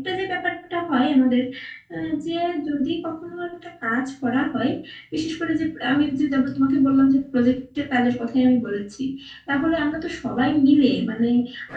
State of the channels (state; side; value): identical; both; correlation 1.00